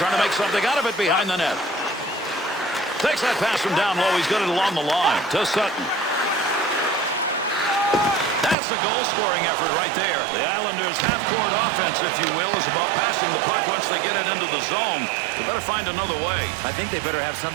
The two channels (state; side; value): drops out; left; at 8.6 s